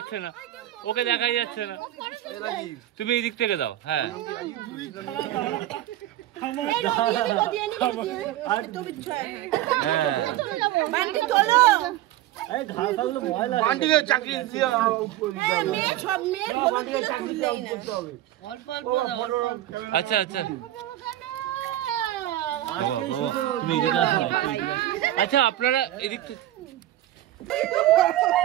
না, ওকে দেখাই যাচ্ছে না। তুমি এই দিক থেকে দাও। হ্যাঁ চাকরি দিয়ে আচ্ছা আচ্ছা বাবা বাবা তুমি এদিকে আসো না, একটু এদিকে আসো। আচ্ছা আপনারা এদিক থেকে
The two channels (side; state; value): left; quieter; 14.2 dB